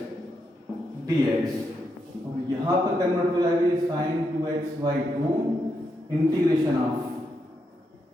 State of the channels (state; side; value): normal; both; correlation 0.82